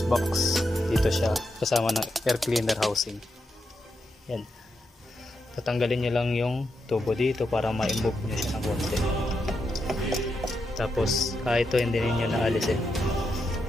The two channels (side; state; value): both; normal; correlation 0.84